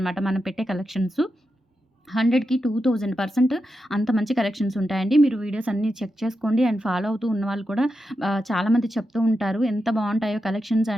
మనం పెట్టే కలెక్షన్స్. 100కి 2000% అంత మంచి కలెక్షన్స్ ఉంటాయండి. మీరు వీడియోస్ అన్నీ చెక్ చేసుకోండి. అండ్ ఫాలో అవుతూ ఉన్నవాళ్ళు కూడా చాలామంది చెప్తూ ఉంటారు. ఎంత బావుంటాయో కలెక్షన్స్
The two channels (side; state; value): both; normal; correlation 0.88